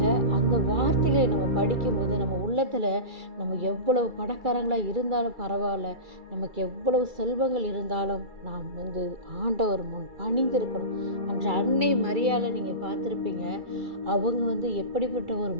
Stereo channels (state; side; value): late; left; 2.3 ms